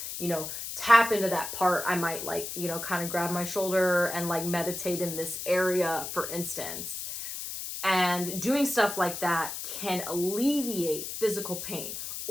tap into that part, I might like, kind of grab my shoulder and like meditate in this area, for instance. And doing stuff like that can alleviate physical pain.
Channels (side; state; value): left; noise; hiss, 7 dB below the sound